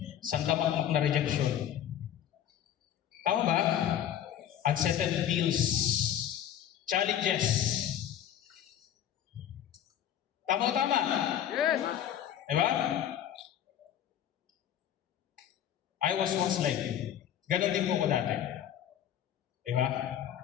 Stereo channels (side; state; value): right; quieter; 10.4 dB